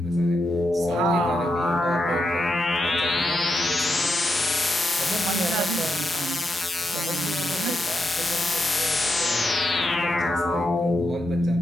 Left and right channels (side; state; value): both; normal; correlation 0.85